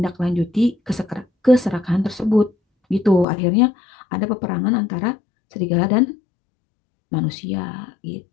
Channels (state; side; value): drops out; right; at 3.2 s